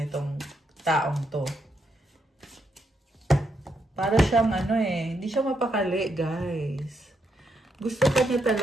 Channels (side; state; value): both; normal; correlation 0.79